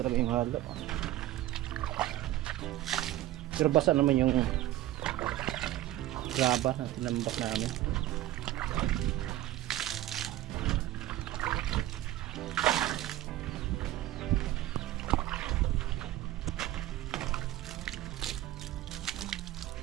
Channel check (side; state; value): left; quieter; 14.7 dB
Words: yung halo. Pero basa naman yung graba na tinambak namin.